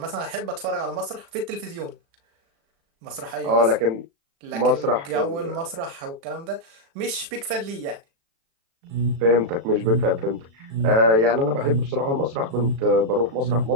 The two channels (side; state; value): left; late; 36 ms